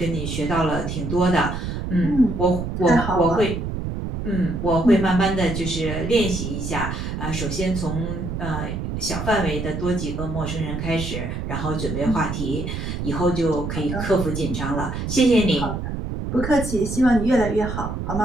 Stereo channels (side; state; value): right; noise; rumble, 4 dB below the sound